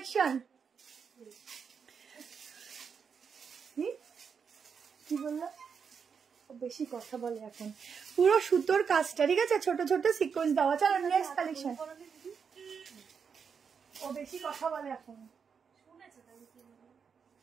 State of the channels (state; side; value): quieter; left; 6.4 dB